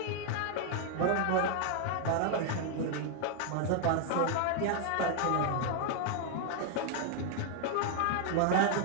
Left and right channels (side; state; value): both; different; correlation 0.00